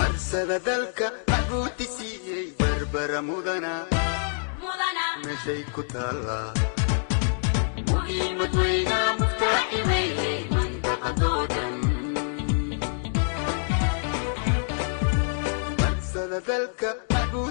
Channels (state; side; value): silent; right; digital silence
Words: marsada dalka maxbuuti siiyey barbara mudana meeshay ku taallaa muhiimad weyna muftaaximeeyey mantaqadoodan marsada dalka